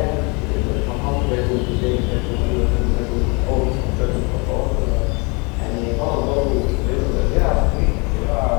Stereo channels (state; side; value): quieter; right; 30.6 dB